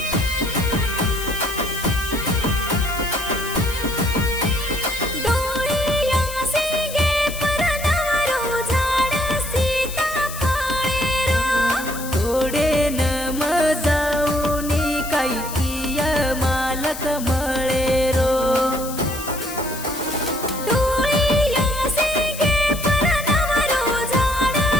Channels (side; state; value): left; noise; hiss, 11 dB below the sound